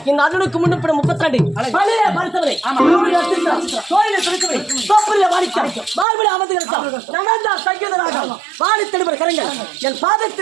இந்த அர்ஜுனுக்கு முன்னுப்படும் 32 பழைய பரிசவரை கோயிலை துடிக்கவை தோப்பரிய வாடிக்கை மார்பிட அமர்ந்துகிறார் நடந்தா சங்கீதராக வாடி தெளிவர் கரங்கள் என்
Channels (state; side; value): drops out; left; at 6.1 s